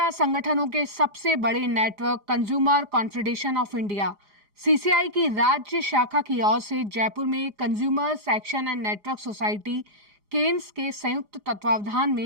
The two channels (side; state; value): left; late; 4.9 ms